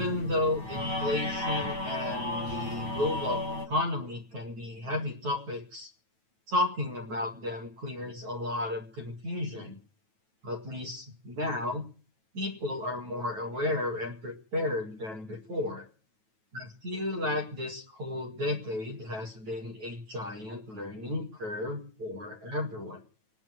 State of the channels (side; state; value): left; late; 9.2 ms